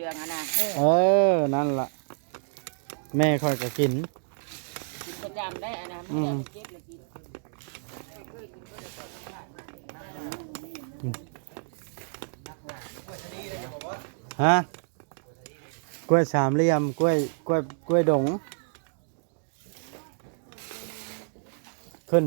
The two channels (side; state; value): left; silent; digital silence